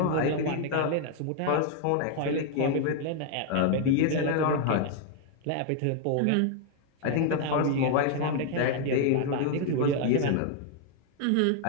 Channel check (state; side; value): different; both; correlation 0.00